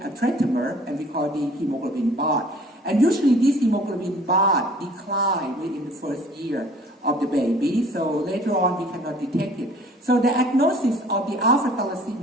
a tetramer, and we call the hemoglobin bath. And usually this hemoglobin bath declines within the first year of the baby, so later on we cannot detect it. So the diagnosis of the alpha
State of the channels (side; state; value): both; normal; correlation 0.52